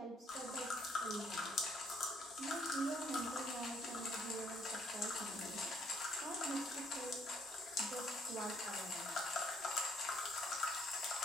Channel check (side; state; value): both; normal; correlation 0.67